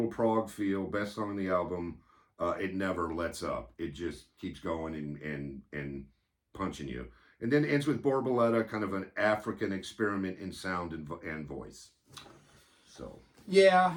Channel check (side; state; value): both; identical; correlation 1.00